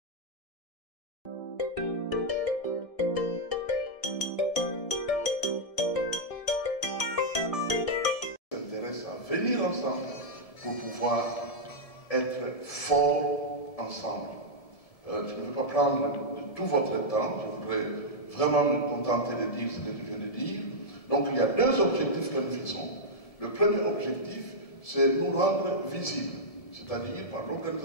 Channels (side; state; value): right; late; 1.7 ms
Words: s'intéressent à venir ensemble pour pouvoir être forts ensemble. Je ne vais pas prendre de tout votre temps, je voudrais vraiment me contenter de dire ce que je viens de dire. Donc il y a 2 objectifs que nous visons. Le premier objectif, c'est nous rendre visibles, c'est-à-dire par